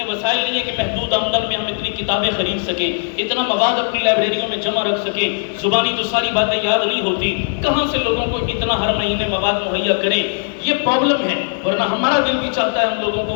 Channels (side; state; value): right; silent; digital silence